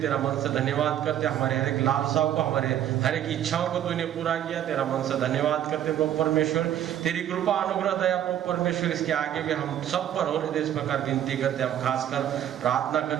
मन से धन्यवाद करते। हमारे हर एक लालसाओं को, हमारे हर एक इच्छाओं को तूने पूरा किया, तेरा मन से धन्यवाद करते प्रभु परमेश्वर। तेरी कृपा अनुग्रह दया प्रभु परमेश्वर इसके आगे भी हम सब पर होने दे, इस प्रकार विनती करते। हम खासकर प्रार्थना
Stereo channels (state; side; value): quieter; left; 11.0 dB